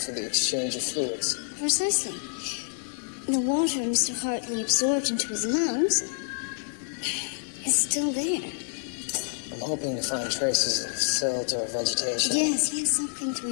the exchange of fluids. Precisely. The water Mr. Hartley absorbed into his lungs is still there. I'm hoping to find traces of silt or vegetation. Yes, something to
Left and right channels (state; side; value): silent; right; digital silence